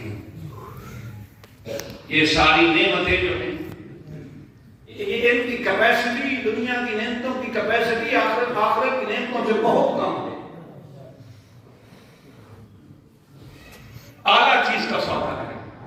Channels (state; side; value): identical; both; correlation 1.00